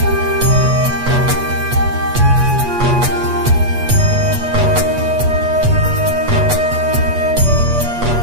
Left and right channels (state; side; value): late; left; 8.3 ms